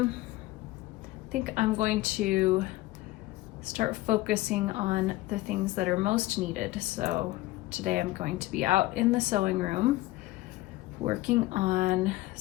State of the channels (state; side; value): quieter; right; 18.5 dB